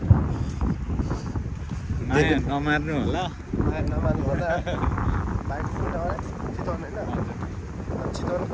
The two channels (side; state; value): both; identical; correlation 1.00